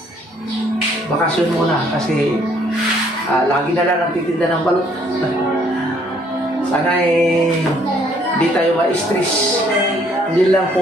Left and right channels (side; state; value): both; normal; correlation 0.64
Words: Bakasyon muna kasi lagi na lang nagtitinda ng balot. Sana hindi tayo ma-stress. Hindi lang